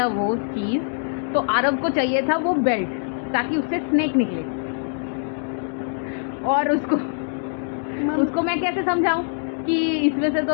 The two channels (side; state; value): right; silent; digital silence